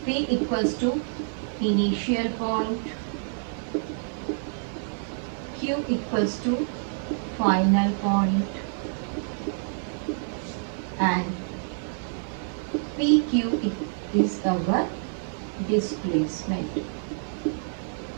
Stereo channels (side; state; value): left; silent; digital silence